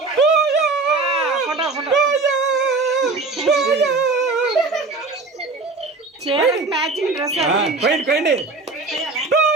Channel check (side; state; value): left; quieter; 3.6 dB